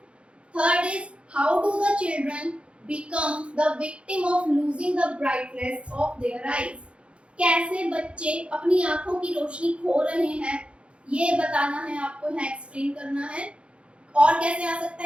Third is how do the children become the victim of losing the brightness of their eyes. कैसे बच्चे अपनी आंखों की रोशनी खो रहे हैं ये बताना है आपको, यहाँ एक्सप्लेन करना है। और कैसे आ सकता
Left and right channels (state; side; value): late; left; 0.059 ms